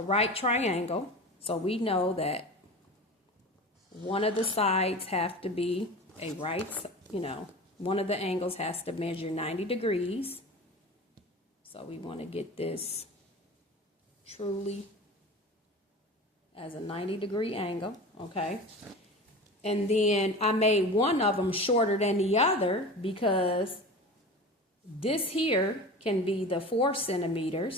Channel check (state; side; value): normal; both; correlation 0.33